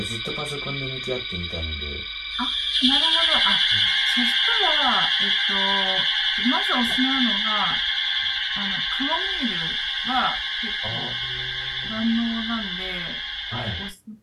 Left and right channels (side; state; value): both; identical; correlation 1.00